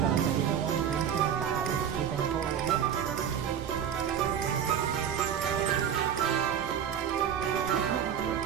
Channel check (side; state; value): left; quieter; 8.7 dB